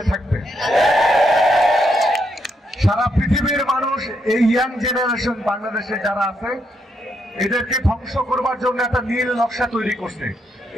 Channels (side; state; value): both; normal; correlation 0.78